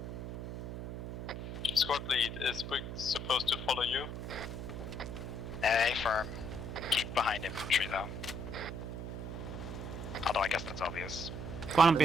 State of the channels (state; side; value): noise; right; hum, 6 dB below the sound